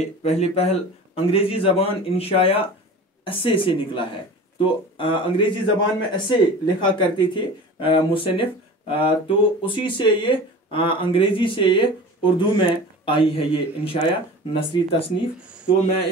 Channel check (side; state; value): both; normal; correlation 0.37